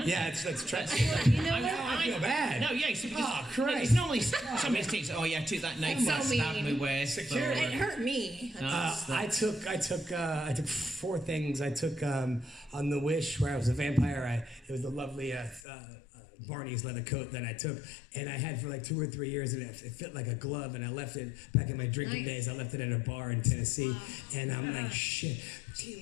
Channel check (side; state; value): right; drops out; at 15.6 s